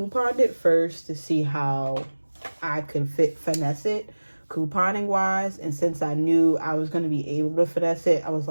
it first to see how I could finesse it couponing wise. And since I knew I was going to be able to finesse it, I was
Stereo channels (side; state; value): both; inverted; correlation -1.00